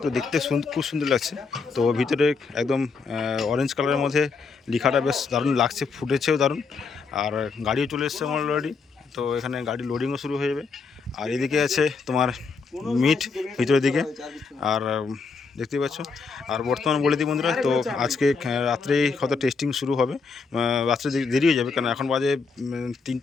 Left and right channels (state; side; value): quieter; right; 4.8 dB